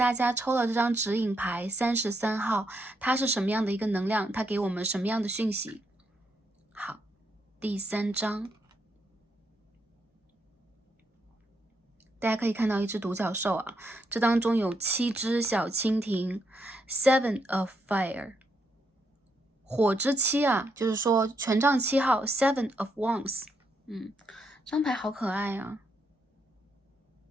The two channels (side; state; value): both; normal; correlation 0.78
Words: 家抽了这张指引牌33号，它是什么样的一个能量，它给我们什么样的讯息？好，第3张，大家可以看到一只独角兽啊，这当中有7只小蜻蜓 ，Seven of Fire， 火之7啊，就是说权杖7号 Seven of Wands， 这张牌好可爱啊。